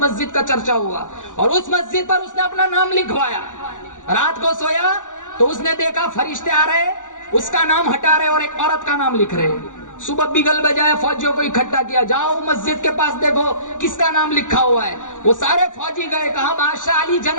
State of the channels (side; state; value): right; late; 0.86 ms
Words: مسجد کا چرچا ہوا، اور اس مسجد پر اس نے اپنا نام لکھوایا۔ رات کو سویا تو اس نے دیکھا فرشتے آ رہے، اس کا نام ہٹا رہے اور ایک عورت کا نام لکھ رہے۔ صبح بگل بجائے فوجیوں کو اکٹھا کیا، جاؤ مسجد کے پاس دیکھو کس کا نام لکھا ہوا ہے۔ وہ سارے فوجی گئے، کہا بادشاہ علی